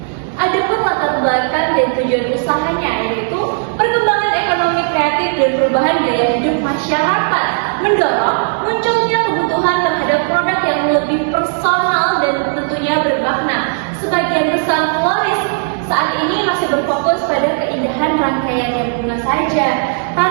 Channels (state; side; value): silent; left; digital silence